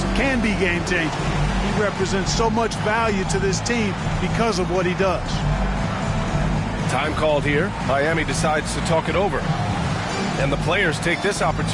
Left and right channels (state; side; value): identical; both; correlation 1.00